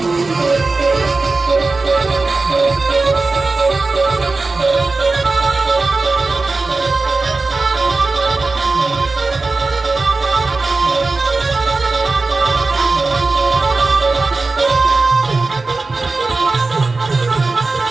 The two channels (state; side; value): quieter; left; 3.6 dB